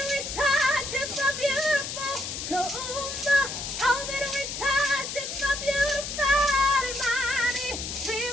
we touch is so beautiful. Kuumba, all that we touch is so beautiful. Imani, we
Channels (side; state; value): left; noise; hiss, 5 dB below the sound